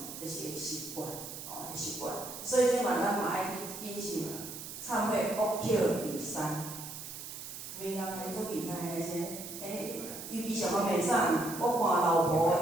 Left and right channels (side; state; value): right; noise; hiss, 10 dB below the sound